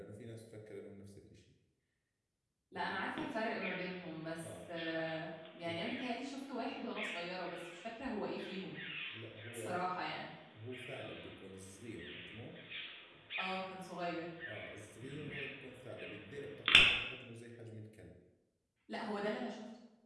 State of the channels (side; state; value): both; identical; correlation 1.00